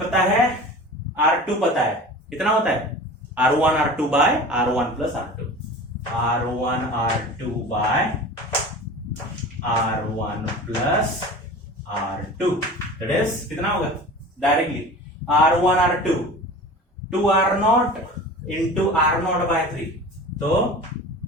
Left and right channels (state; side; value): normal; both; correlation 0.37